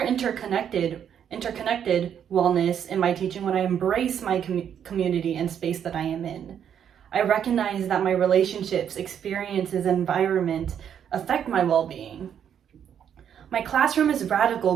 wellness in my teaching when I embrace my community and space that I am in. I recognize that my relationships, experiences, and environment affect my well-being. My classroom is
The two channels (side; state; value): left; quieter; 8.8 dB